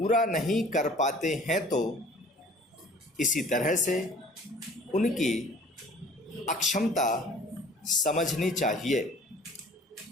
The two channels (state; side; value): normal; both; correlation 0.49